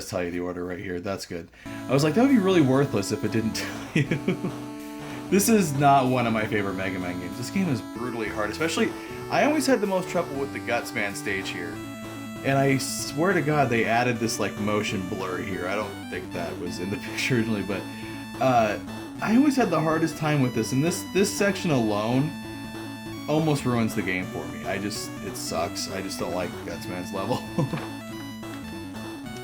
tell you the order right here. That's good. I was like, that would be really worthless if it didn't tell you. This is not one of my favorite Mega Man games. This game is brutally hard, especially, I always had the most trouble with the Gutsman stage here. And I swear to God, they added this like motion blur here. I don't think that was in the picture originally, but I always had the hardest time with this. And this section alone almost ruins the game for me. It sucks. I just don't like Gutsman's level.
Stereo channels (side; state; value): both; identical; correlation 1.00